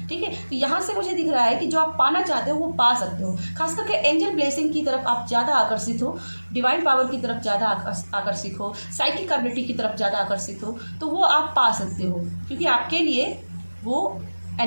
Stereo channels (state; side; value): inverted; both; correlation -1.00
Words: ठीक है। तो यहाँ से मुझे दिख रहा है कि जो आप पाना चाहते हो वो पा सकते हो। खास करके एंजल ब्लेसिंग की तरफ आप ज़्यादा आकर्षित हो, डिवाइन पावर की तरफ ज़्यादा आकर्षित हो, साइकिक एबिलिटी की तरफ ज़्यादा आकर्षित हो, तो वो आप पा सकते हो, क्योंकि आपके लिए वो